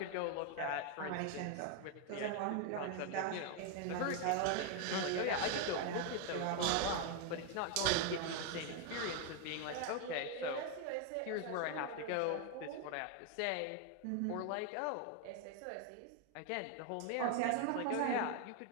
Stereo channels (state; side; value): different; both; correlation 0.01